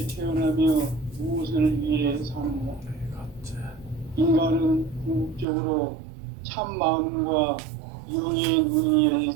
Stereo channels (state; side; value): drops out; left; at 5.5 s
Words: 태어나며 무엇을 위해 사는가? 인간은 궁극적으로 참 마음과 영의 눈이 열릴